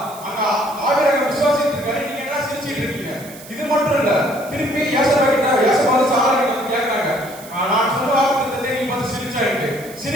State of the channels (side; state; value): right; noise; hiss, 18 dB below the sound